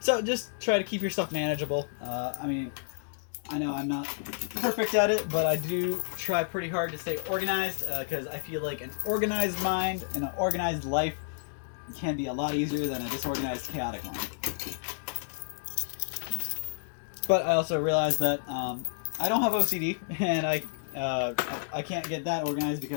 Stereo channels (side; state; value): right; silent; digital silence